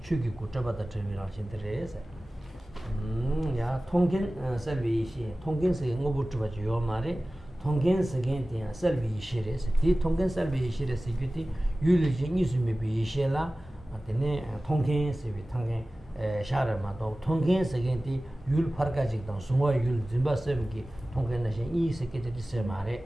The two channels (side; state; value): both; normal; correlation 0.97